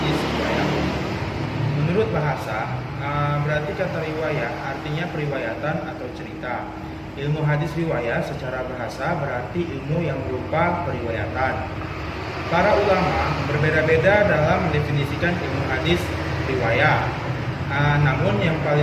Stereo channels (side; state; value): both; identical; correlation 1.00